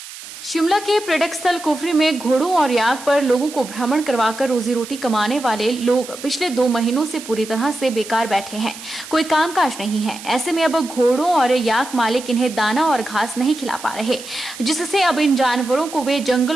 शिमला के पर्यटक स्थल कुफरी में घोड़ों और याक पर लोगों को भ्रमण करवाकर रोजी रोटी कमाने वाले लोग पिछले 2 महीनों से पूरी तरह से बेकार बैठे हैं। कोई कामकाज नहीं है। ऐसे में अब घोड़ों और याक मालिक इन्हें दाना और घास नहीं खिला पा रहे, जिससे अब इन जानवरों को वे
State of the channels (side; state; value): right; noise; hiss, 14 dB below the sound